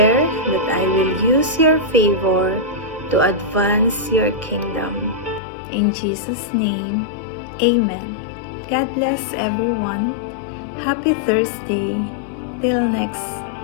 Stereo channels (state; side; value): drops out; right; at 5.4 s